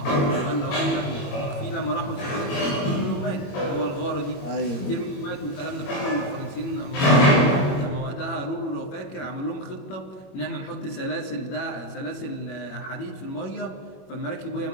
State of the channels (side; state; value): right; late; 22 ms